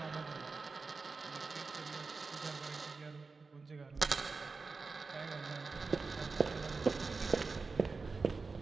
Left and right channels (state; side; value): quieter; left; 4.3 dB